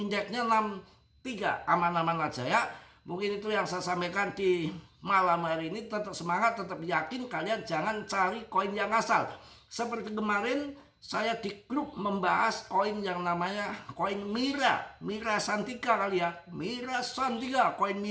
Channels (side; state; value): both; identical; correlation 1.00